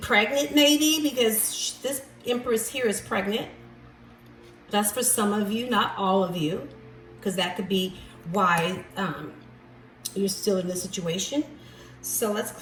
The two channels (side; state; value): both; identical; correlation 1.00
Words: maybe, because this Empress here is pregnant. That's for some of you, not all of you, because that could be why you're still in this situation. So let's